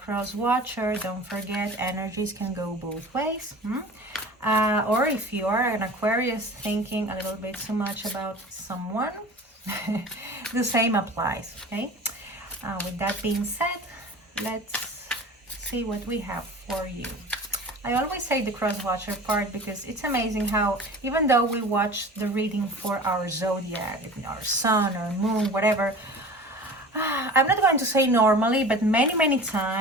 watcher, don't forget energies can go both ways. Or if you are an Aquarius thinking a little bit too much about someone, the same applies. Okay, with that being said, let's see what we have for you. I always say the cross watcher part because it's amazing how even though we watch the reading for our zodiac, our sun or moon, whatever, I'm not going to say normally, but many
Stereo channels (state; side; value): normal; both; correlation 0.38